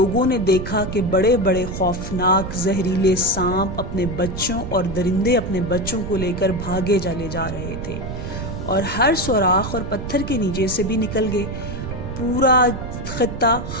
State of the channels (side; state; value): right; noise; rumble, 7 dB below the sound